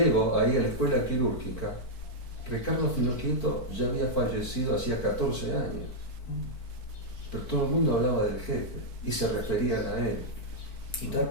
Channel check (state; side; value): late; right; 4.5 ms